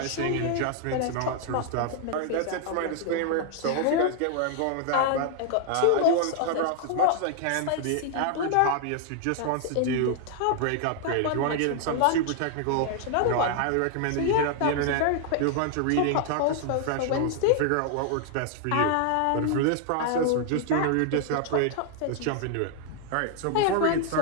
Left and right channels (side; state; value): both; different; correlation 0.00